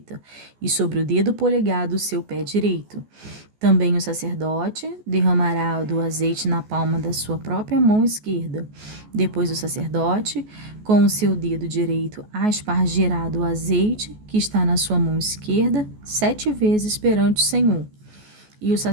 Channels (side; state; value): left; late; 14 ms